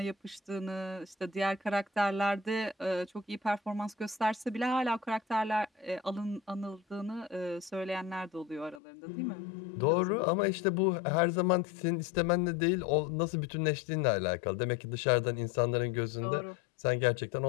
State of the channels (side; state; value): right; drops out; at 8.8 s